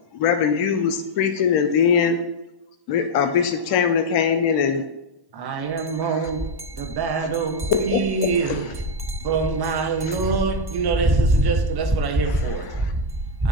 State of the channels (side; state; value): left; late; 1.1 ms